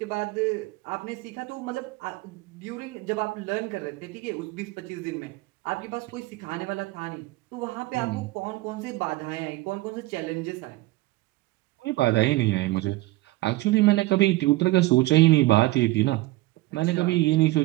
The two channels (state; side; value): quieter; left; 19.2 dB